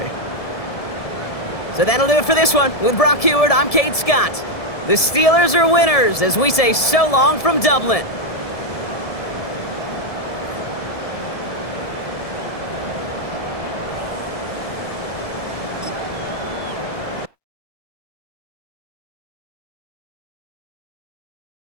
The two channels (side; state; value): right; late; 1.7 ms